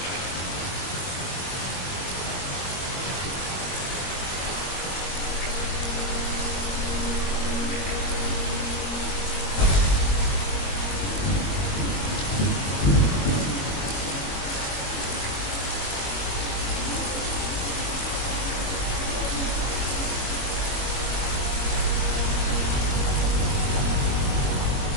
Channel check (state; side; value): late; right; 21 ms